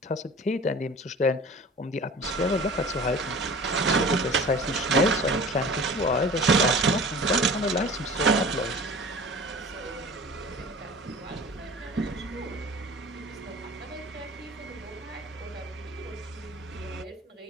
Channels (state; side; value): normal; both; correlation 0.41